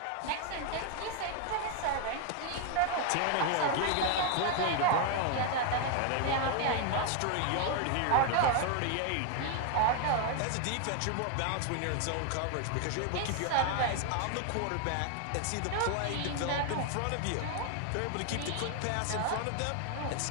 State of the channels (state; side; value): different; both; correlation 0.00